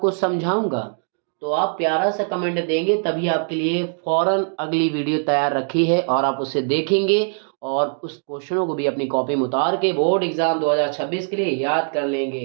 समझाऊंगा। तो आप प्यारा सा कमेंट देंगे, तभी आपके लिए फौरन अगली वीडियो तैयार रखी है और आप उसे देखेंगे और उस क्वेश्चनों को भी अपनी कॉपी में उतार के बोर्ड एग्जाम 2026 के लिए याद कर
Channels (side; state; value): left; silent; 65 dB below the other